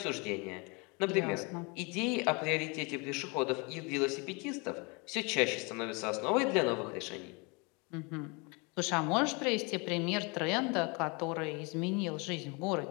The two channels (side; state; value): right; quieter; 30.2 dB